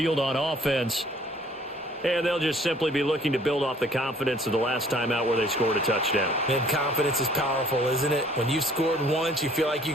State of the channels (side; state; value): both; normal; correlation 0.57